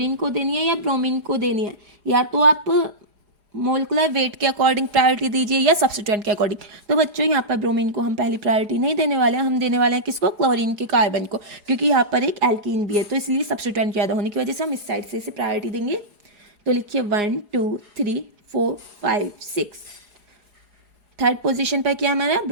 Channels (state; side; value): late; left; 4.9 ms